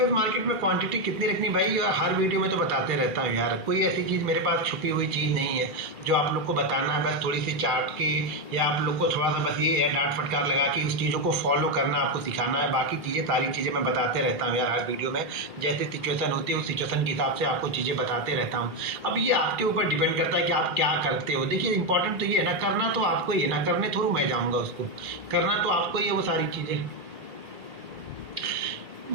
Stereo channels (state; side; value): late; left; 2.4 ms